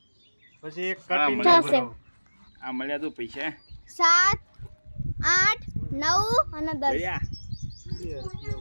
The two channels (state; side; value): inverted; both; correlation -1.00